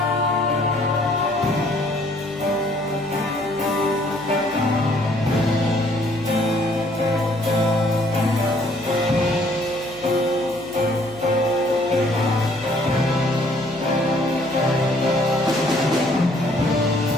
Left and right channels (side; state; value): left; noise; hum, 24 dB below the sound